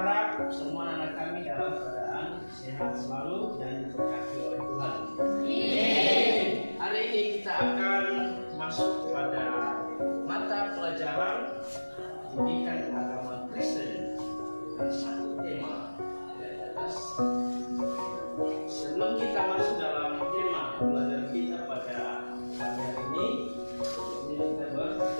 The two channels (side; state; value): both; inverted; correlation -1.00